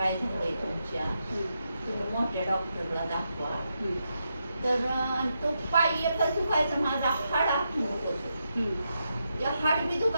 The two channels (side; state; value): both; inverted; correlation -0.84